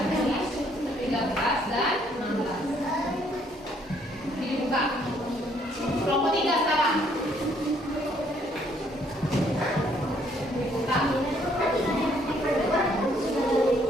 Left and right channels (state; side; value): normal; both; correlation 0.66